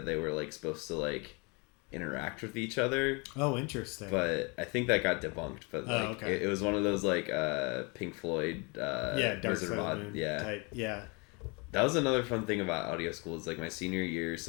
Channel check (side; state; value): right; quieter; 30.6 dB